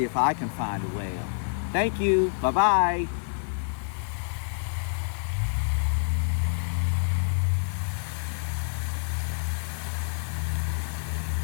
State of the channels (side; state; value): right; silent; digital silence